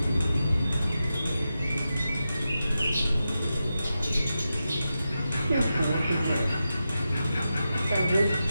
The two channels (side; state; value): both; inverted; correlation -0.90